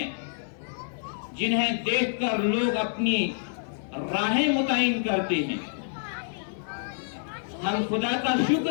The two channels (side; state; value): right; silent; digital silence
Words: जिन्हें देखकर लोग अपनी राहें मुतय्यन करते हैं। हम खुदा का